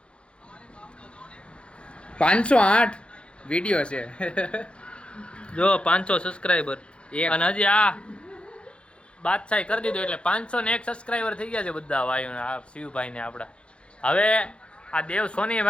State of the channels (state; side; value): late; right; 0.058 ms